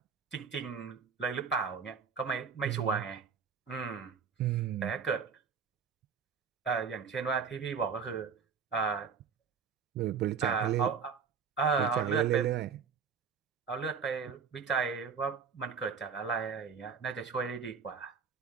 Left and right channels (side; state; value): left; quieter; 6.1 dB